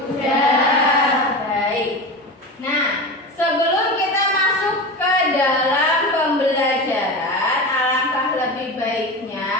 Baik. Nah, sebelum kita masuk ke dalam pembelajaran, alangkah lebih baiknya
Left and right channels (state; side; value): normal; both; correlation 0.26